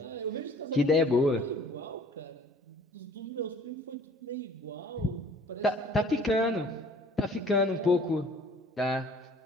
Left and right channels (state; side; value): normal; both; correlation 0.53